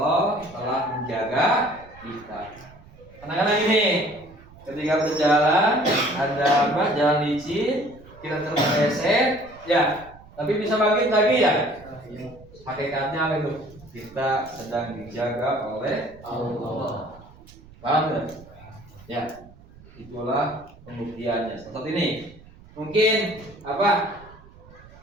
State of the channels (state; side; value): noise; right; rumble, 22 dB below the sound